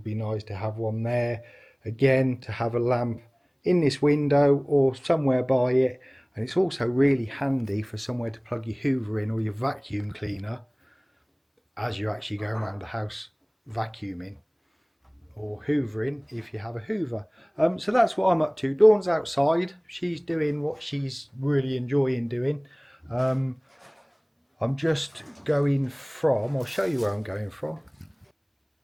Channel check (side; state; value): both; identical; correlation 1.00